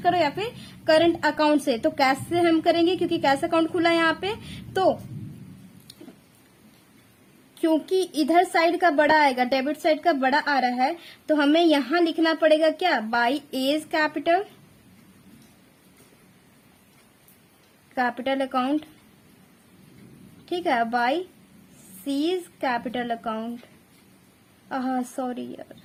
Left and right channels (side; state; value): both; identical; correlation 1.00